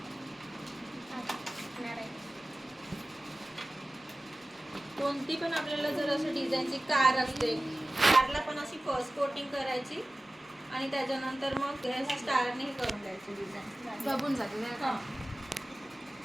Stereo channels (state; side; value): normal; both; correlation 0.96